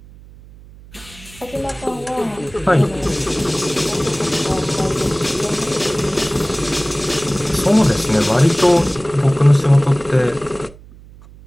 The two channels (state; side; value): noise; right; hum, 21 dB below the sound